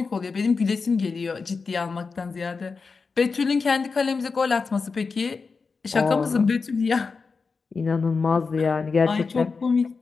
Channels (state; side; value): quieter; right; 4.7 dB